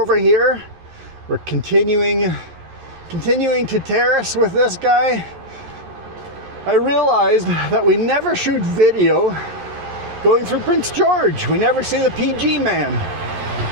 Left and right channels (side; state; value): left; late; 11 ms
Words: here. We're continuing to terrace with this guy. I realized that we never shoot video going through Prince George. We never see the PG man.